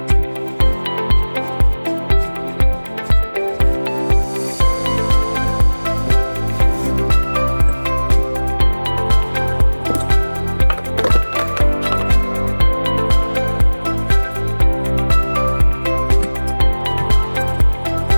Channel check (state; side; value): inverted; both; correlation -1.00